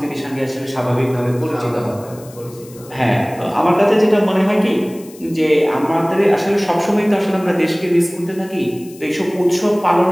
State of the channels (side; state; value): left; noise; hiss, 22 dB below the sound